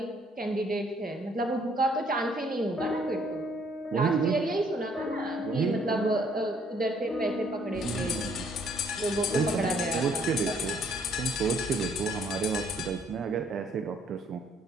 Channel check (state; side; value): normal; both; correlation 0.65